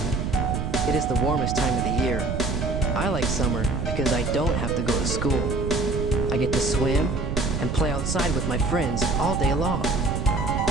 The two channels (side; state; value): right; noise; rumble, 2 dB below the sound